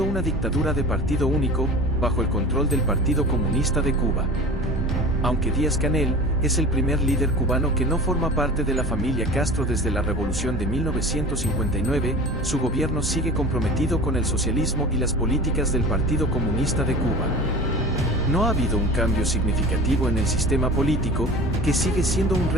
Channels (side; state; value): both; normal; correlation 0.37